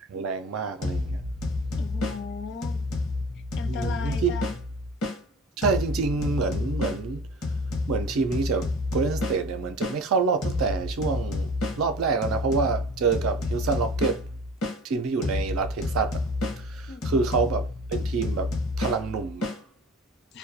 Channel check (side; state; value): both; normal; correlation 0.40